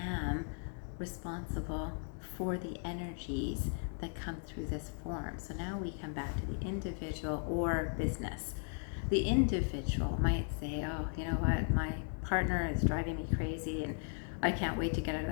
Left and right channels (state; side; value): silent; right; 53 dB below the other